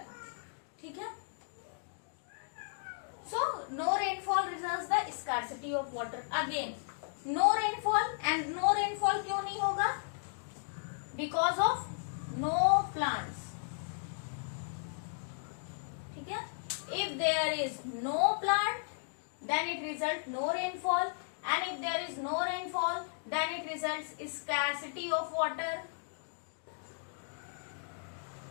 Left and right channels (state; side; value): silent; right; digital silence